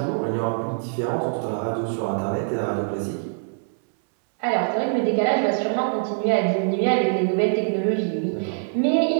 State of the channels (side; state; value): left; silent; 63 dB below the other